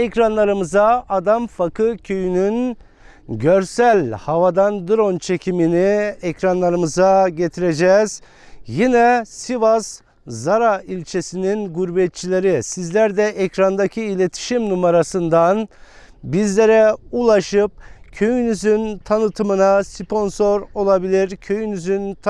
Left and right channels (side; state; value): both; identical; correlation 1.00